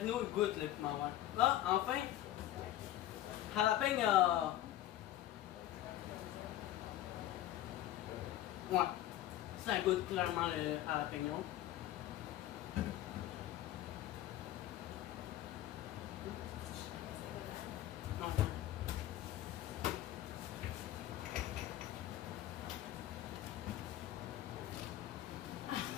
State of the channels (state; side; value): quieter; right; 13.6 dB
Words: il goûte le piment vert. Ah, enfin, jalapeno. Ouais, ça goûte clairement le jalapeno. Non.